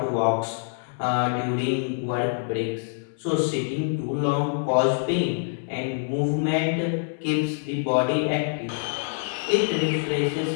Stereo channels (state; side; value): silent; right; digital silence